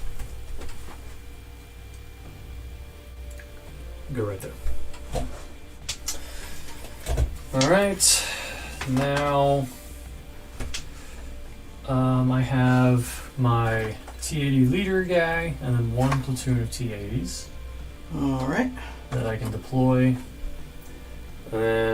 Go right there. All right. Now, I have my T-80 leader guy, and then one platoon of T-80s. All right. That I can deploy. And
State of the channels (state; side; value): identical; both; correlation 1.00